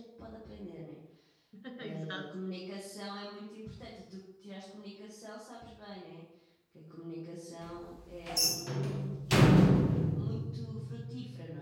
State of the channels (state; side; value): identical; both; correlation 1.00